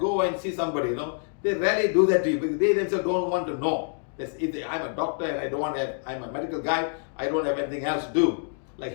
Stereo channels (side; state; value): right; silent; digital silence